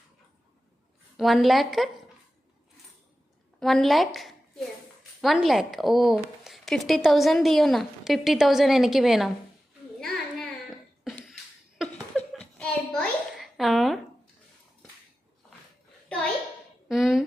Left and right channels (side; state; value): both; normal; correlation 0.94